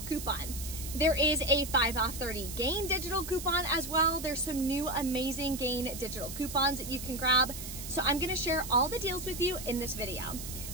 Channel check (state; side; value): noise; right; hiss, 9 dB below the sound